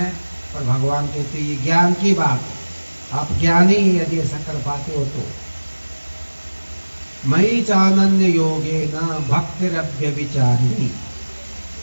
और भगवान कहते हैं ये ज्ञान की बात है। आप ज्ञानी यदि ऐसा कर पाते हो तो। मयि चानन्य योगे न भक्तिरव्यभिचारिणी,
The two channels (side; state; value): both; inverted; correlation -1.00